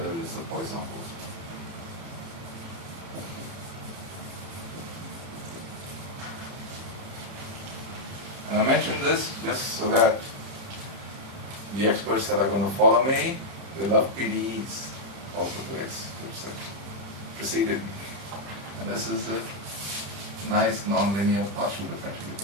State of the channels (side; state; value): left; late; 30 ms